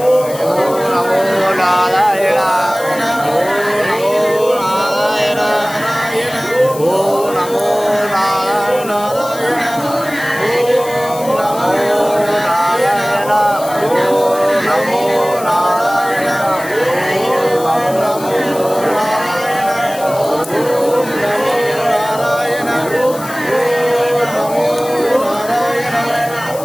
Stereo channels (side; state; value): left; noise; hiss, 15 dB below the sound